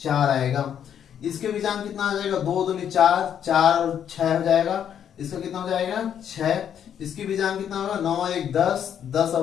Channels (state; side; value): quieter; right; 9.0 dB